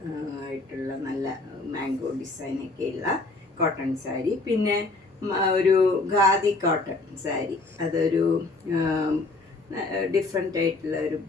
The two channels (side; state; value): right; quieter; 3.3 dB